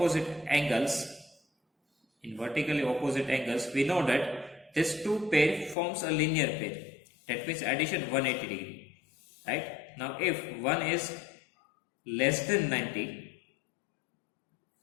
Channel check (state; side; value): drops out; right; at 5.8 s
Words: angles, we know that this two pair forms a linear pair. That means addition 180 degree, right? Now if one is less than 90,